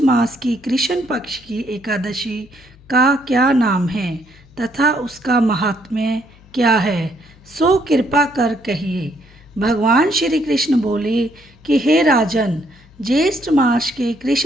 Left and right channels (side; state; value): left; noise; hum, 26 dB below the sound